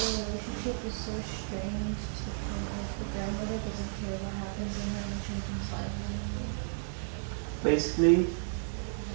relationship is so strained to the point of the grandmother doesn't care what happens in her and the children's lives anymore. Basically,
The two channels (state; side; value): silent; left; digital silence